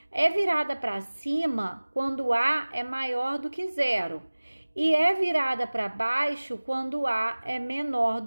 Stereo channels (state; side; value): inverted; both; correlation -1.00